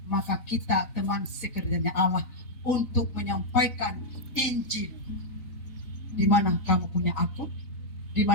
maka kita teman sekerjanya Allah untuk menyampaikan Injil. Di mana kamu punya akun, di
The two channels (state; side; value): late; right; 3.8 ms